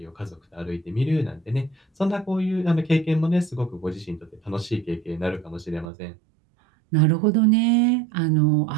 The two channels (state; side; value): drops out; left; at 5.9 s